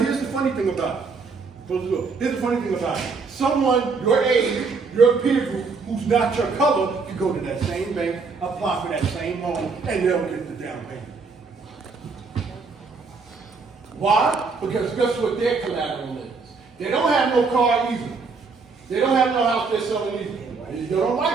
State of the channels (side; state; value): left; quieter; 4.6 dB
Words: here's the funny thing about it. Here's the funny thing about it. Someone your age, your peer group, who's not your color, can go to that same bank, apply for that same loan, and they'll get the down payment. Why? Because guess what their collateral is? They don't have no car either. They don't have no house they're selling either. And if you don't